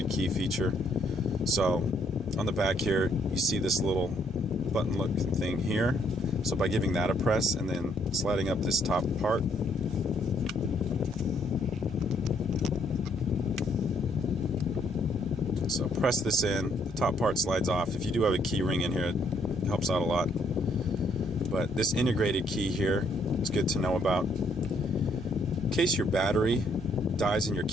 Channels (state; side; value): normal; both; correlation 0.69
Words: key feature. So on the back here, you see this little button looking thing here. So by giving that a press and then sliding up this top part, so press this in, the top part slides off. If you do have a key ring in here, it helps out a lot. But this integrated key here is good to know about. In case your battery dies in your